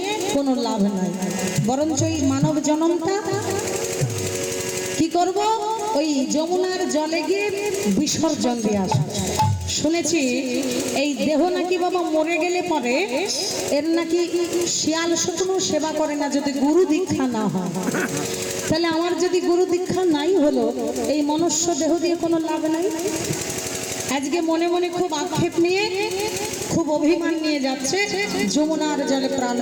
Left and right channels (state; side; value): identical; both; correlation 1.00